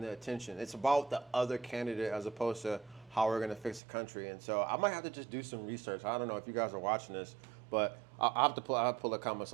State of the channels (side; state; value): left; drops out; at 3.8 s